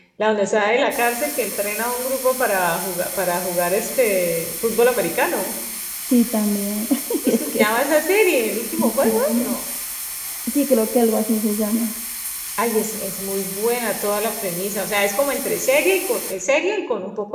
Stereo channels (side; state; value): both; identical; correlation 1.00